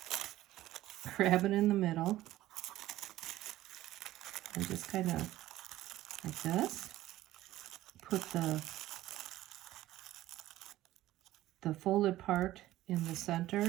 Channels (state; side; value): quieter; left; 15.3 dB